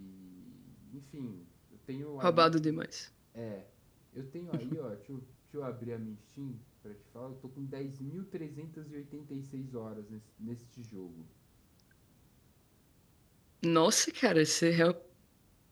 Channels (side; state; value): both; identical; correlation 1.00